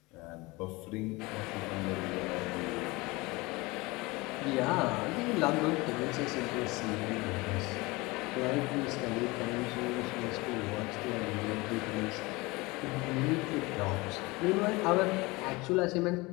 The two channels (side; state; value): right; quieter; 23.2 dB